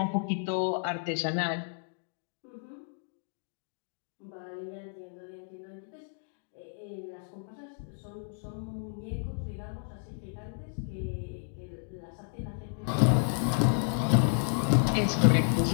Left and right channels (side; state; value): right; silent; digital silence